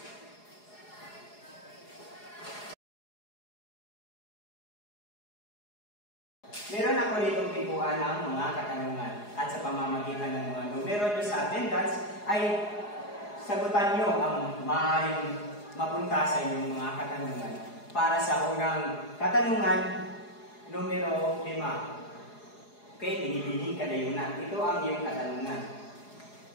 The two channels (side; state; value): right; late; 4.8 ms